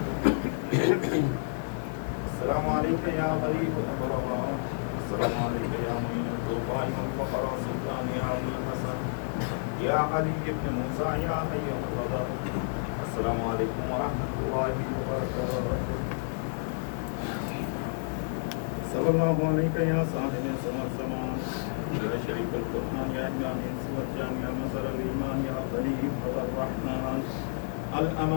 السلام عليك يا غريب الأغرباء. السلام عليك يا معين الضعفاء والفقراء سلطان يا أبو الحسن يا علي بن موسى يا حي القدر. السلام عليكم ورحمة الله وبركاته. صلى الله عليك يا صاحب سوى الزمان يا شريف القرآن يا إمام سوى يا نصر الإيمان يا خليفة الرحمن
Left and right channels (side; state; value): right; silent; digital silence